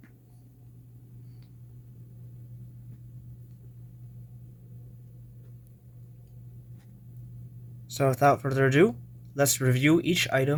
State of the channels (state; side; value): identical; both; correlation 1.00